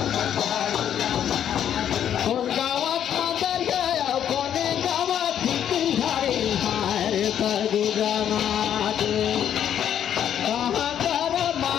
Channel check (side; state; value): right; quieter; 9.7 dB